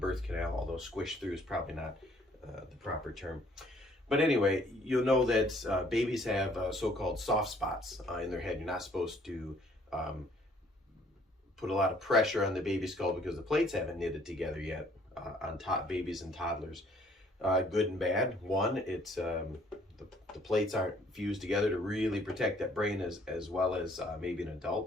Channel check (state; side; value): normal; both; correlation 0.61